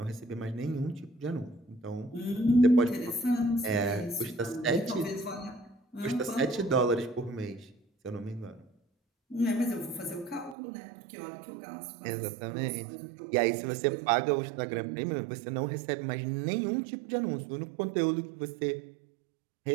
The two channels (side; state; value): left; drops out; at 10.6 s